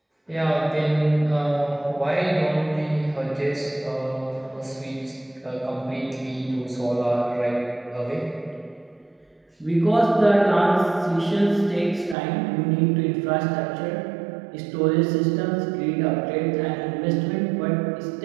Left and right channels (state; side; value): drops out; left; at 12.2 s